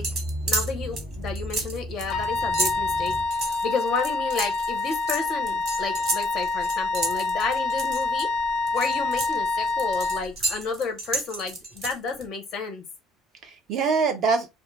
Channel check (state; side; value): normal; both; correlation 0.65